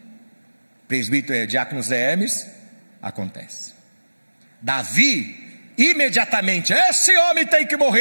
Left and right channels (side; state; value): both; inverted; correlation -1.00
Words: presbítero Diácono Zé Hermes, acontece. Davi, imediatamente, esse homem tem que